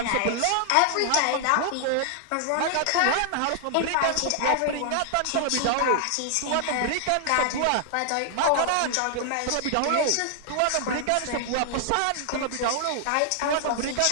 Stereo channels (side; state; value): both; different; correlation 0.00